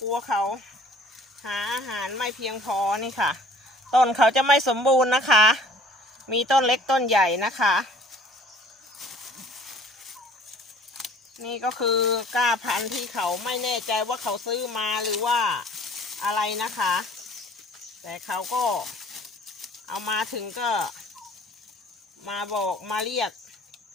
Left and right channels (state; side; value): normal; both; correlation 0.52